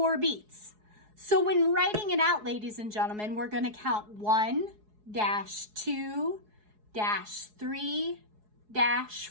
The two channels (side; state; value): left; late; 4.7 ms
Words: beats. So when writing it out, ladies and gentlemen, we're going to count 1, 2 3